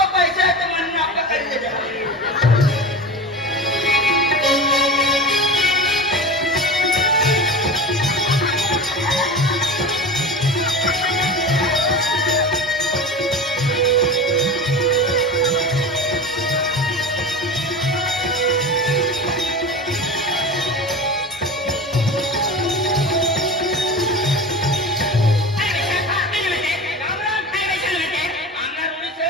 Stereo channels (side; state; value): both; normal; correlation 0.30